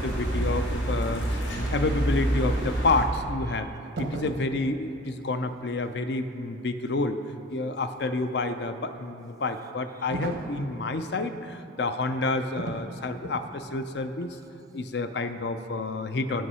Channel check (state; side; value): normal; both; correlation 0.35